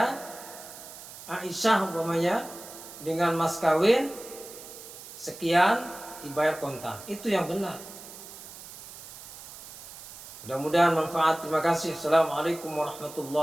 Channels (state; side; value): noise; right; hiss, 14 dB below the sound